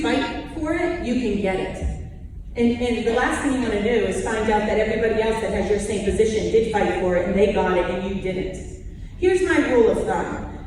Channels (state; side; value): identical; both; correlation 1.00